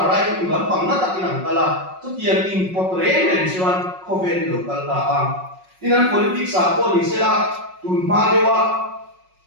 right wing lắm bằng nó tắc inang kala chút tiền import revention cover local ta am inan politics a policy la tun ma dewa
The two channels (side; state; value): left; late; 5.4 ms